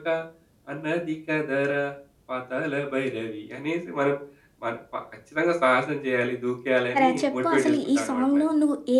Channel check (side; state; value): both; identical; correlation 1.00